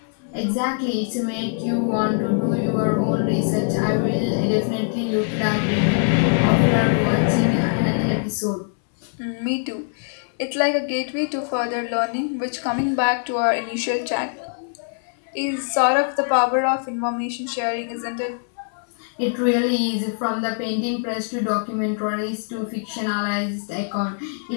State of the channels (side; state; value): right; silent; 64 dB below the other